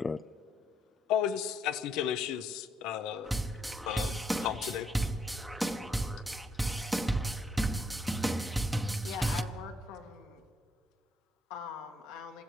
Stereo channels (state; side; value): normal; both; correlation 0.73